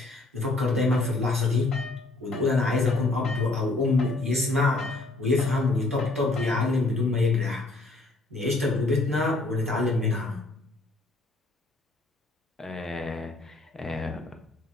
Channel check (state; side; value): quieter; right; 3.0 dB